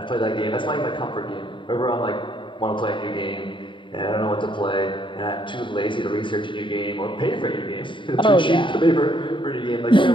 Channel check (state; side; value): late; right; 0.24 ms